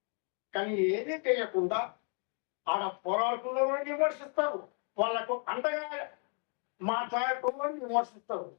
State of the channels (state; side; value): quieter; right; 39.2 dB